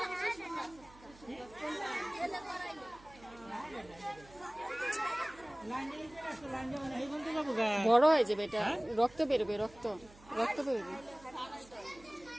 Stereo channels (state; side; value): noise; right; hum, 23 dB below the sound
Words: বড় হয়ে যাবে এটা, রক্ত বেরোবে, রক্ত রক্ত বেরোবে।